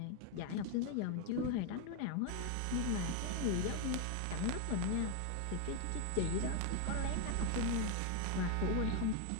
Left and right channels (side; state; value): both; different; correlation 0.01